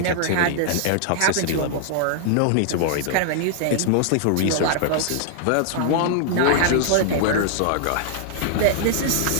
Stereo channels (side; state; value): both; different; correlation -0.01